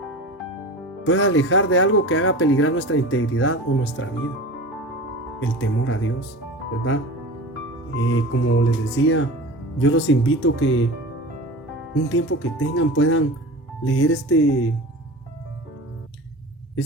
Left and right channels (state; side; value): normal; both; correlation 0.33